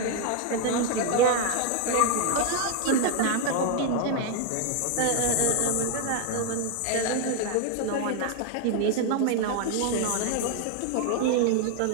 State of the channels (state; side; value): different; both; correlation 0.01